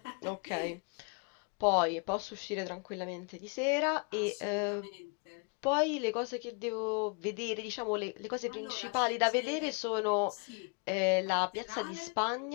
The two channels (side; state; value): right; quieter; 35.2 dB